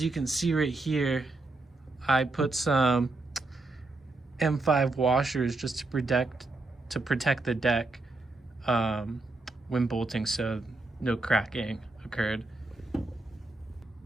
you can see right here, I put some M5 washers just to protect the deck when bolting, so no cracking occurred.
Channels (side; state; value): left; quieter; 3.2 dB